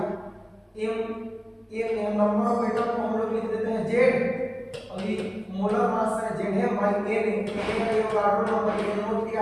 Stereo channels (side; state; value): both; identical; correlation 1.00